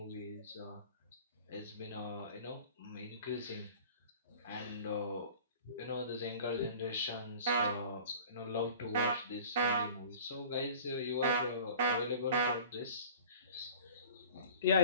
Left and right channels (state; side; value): inverted; both; correlation -0.44